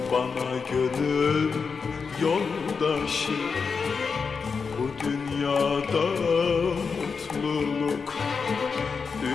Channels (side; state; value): right; quieter; 5.3 dB